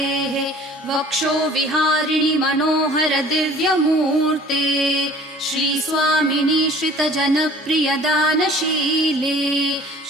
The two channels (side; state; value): both; normal; correlation 0.49